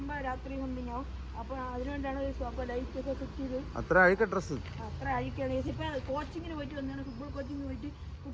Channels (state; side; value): identical; both; correlation 1.00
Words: രാത്രി സംതിങ് ആവും. അപ്പോൾ അതിനുവേണ്ടിയാണ് അപ്പോൾ ലൈറ്റൊക്കെ സെറ്റ് ചെയ്ത്. അത്ര അഴുക്ക ഡ്രസ്സ് അത്ര അഴുക്കാണ്. ഇപ്പം കോച്ചിങ്ങിന് പോയിട്ട് വന്നതാണ്. ഫുട്ബോൾ കോച്ചിങ്ങിന് പോയിട്ട്